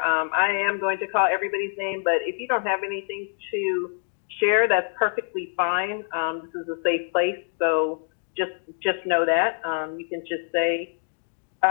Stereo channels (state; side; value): silent; right; digital silence